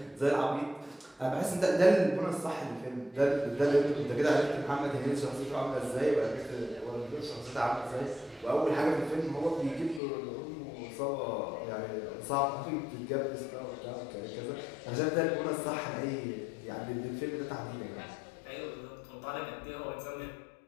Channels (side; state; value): right; drops out; at 10.0 s